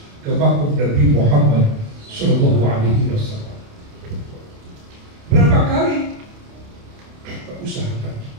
ke makam Nabi Muhammad Sallallahu Alaihi Wasallam. Berapa kali? Usahakan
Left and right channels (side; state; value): left; late; 28 ms